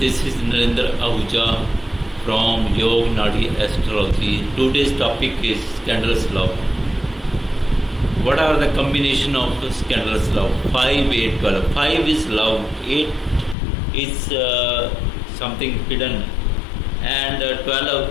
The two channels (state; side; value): drops out; right; at 13.6 s